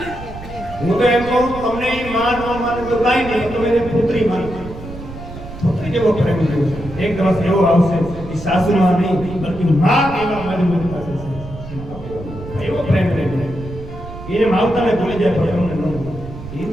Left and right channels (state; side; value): noise; right; rumble, 13 dB below the sound